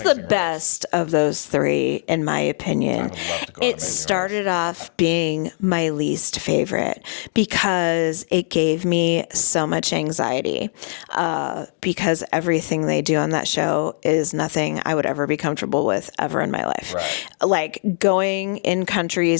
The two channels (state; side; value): silent; right; digital silence